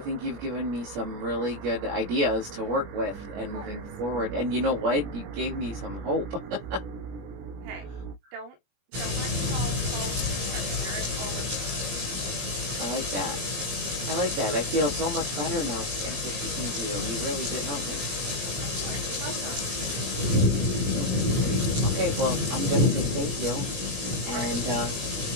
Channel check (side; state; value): left; late; 21 ms